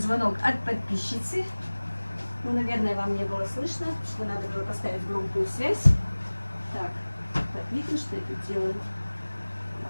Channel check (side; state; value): both; inverted; correlation -1.00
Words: от подписчицы. Ну, наверное, вам не было слышно, что надо было поставить громкую связь. Так, видно, что я тут делаю?